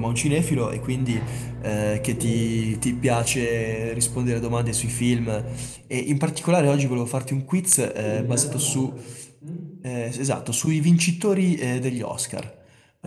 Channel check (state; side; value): identical; both; correlation 1.00